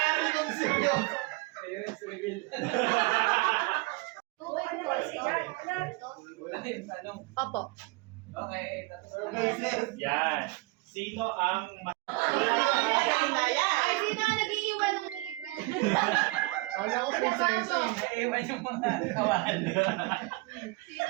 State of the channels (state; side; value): quieter; left; 23.7 dB